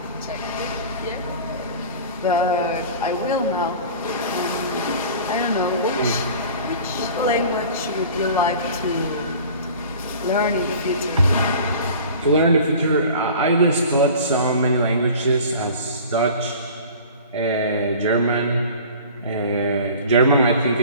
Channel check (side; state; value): both; inverted; correlation -0.42